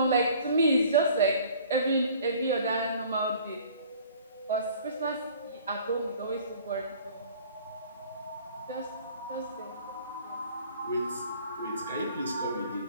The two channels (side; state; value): both; inverted; correlation -0.51